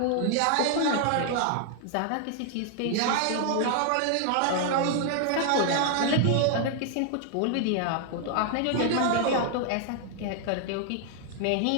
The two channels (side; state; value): both; different; correlation 0.00